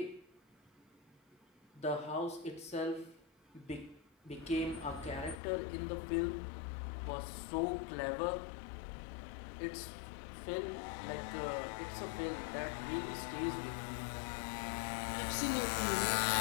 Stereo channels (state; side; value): drops out; right; at 5.4 s